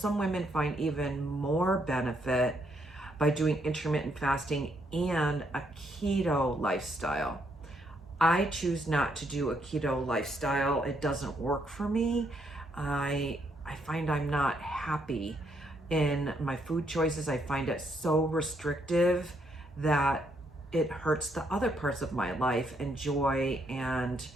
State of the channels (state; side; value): normal; both; correlation 0.74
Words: women find even more benefit by doing intermittent fasting and a keto lifestyle. I choose not to do a keto lifestyle. It doesn't work for me. I find I'm not happy in my food choices. I find it so restrictive that it hurts the other parts of my life and joy and